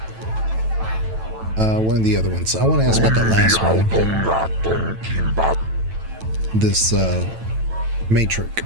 One of the other ones. I want to ask about the last one. This matrix.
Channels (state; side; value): late; left; 9.1 ms